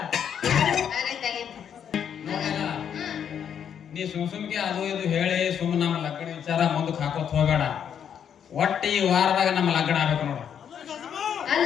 ಆಗೈತೆ ಆಗೈತೆ. ನೋಡಲ್ಲ. ನೀ ಸುಮ್ಗೆ ಅದು ಇದು ಹೇಳಿ ಸುಮ್ಮನೆ ನಮ್ಮ ಲಗ್ನ ವಿಚಾರ ಮುಂದಕ್ಕೆ ಹಾಕೋತ್ ಹೋಗಬೇಡ. ಒಟ್ಟು ಈ ವಾರದಾಗ ನಮ್ಮ ಲಗ್ನ ಆಗ್ಬೇಕು ನೋಡು.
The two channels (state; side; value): quieter; right; 8.4 dB